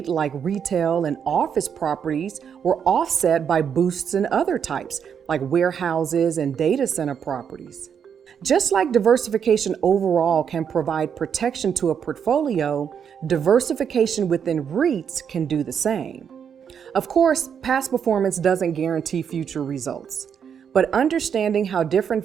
like retail and office properties, were offset by boosts in other types, like warehouses and data center properties. Just like diversification overall can provide protection to a portfolio, diversification within REITs can do the same. Of course, past performance doesn't guarantee future results, but understanding how different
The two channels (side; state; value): left; quieter; 7.6 dB